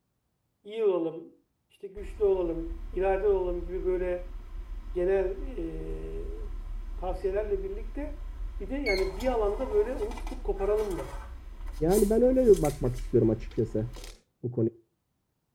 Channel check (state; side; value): identical; both; correlation 1.00